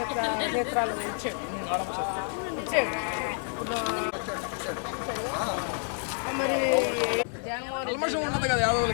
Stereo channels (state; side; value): silent; right; 59 dB below the other